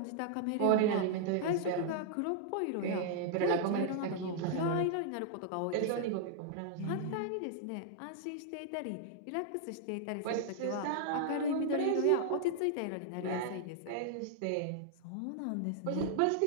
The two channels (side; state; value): both; different; correlation -0.01